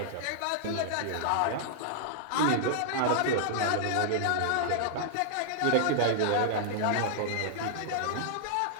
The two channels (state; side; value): different; both; correlation -0.01